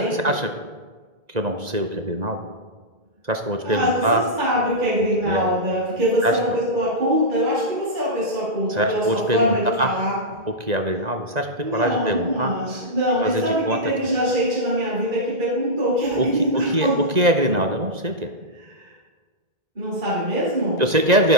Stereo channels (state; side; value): late; left; 1.9 ms